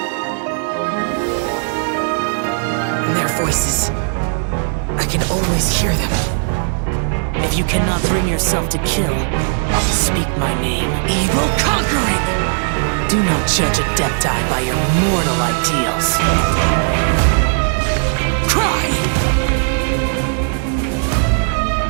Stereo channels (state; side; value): silent; left; digital silence